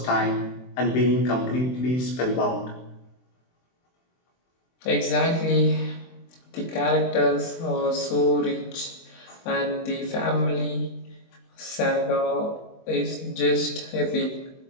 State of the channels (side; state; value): right; late; 23 ms